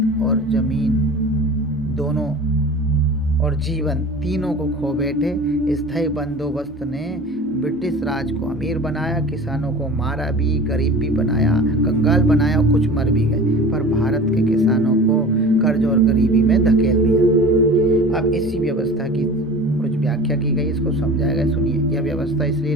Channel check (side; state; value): both; normal; correlation 0.38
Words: और जमीन दोनों और जीवन तीनों को खो बैठे। स्थायी बंदोबस्त ने ब्रिटिश राज को अमीर बनाया, किसानों को मारा भी, गरीब भी बनाया, कंगाल बनाया और कुछ मर भी गए, पर भारत के किसानों को कर्ज और गरीबी में धकेल दिया। अब इसी व्यवस्था की कुछ व्याख्या की गई, इसको समझाया गया, सुनिए। यह व्यवस्था इसलिए